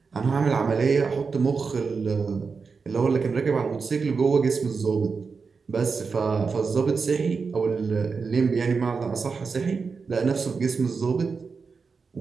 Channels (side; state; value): left; quieter; 5.0 dB